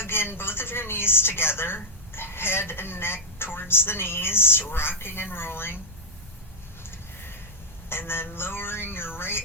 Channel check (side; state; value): both; normal; correlation -0.03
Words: in both of your knees together. Head and neck towards the knees, rocking and rolling. And then lowering your